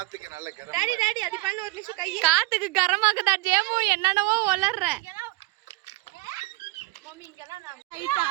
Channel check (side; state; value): left; quieter; 22.2 dB